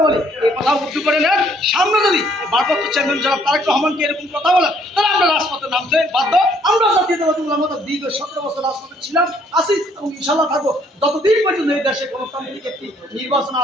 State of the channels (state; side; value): normal; both; correlation 0.64